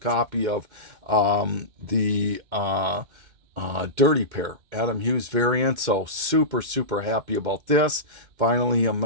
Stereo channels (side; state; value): left; late; 2.2 ms